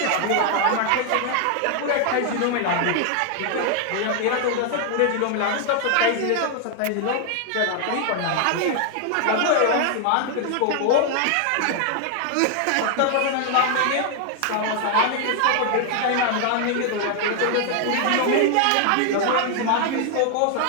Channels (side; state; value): both; different; correlation 0.00